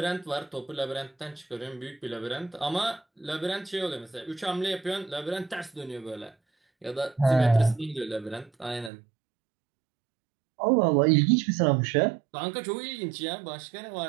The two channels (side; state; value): left; drops out; at 8.9 s